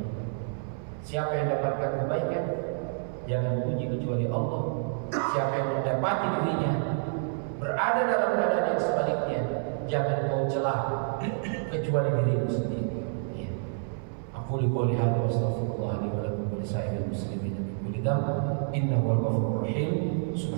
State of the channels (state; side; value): silent; left; 59 dB below the other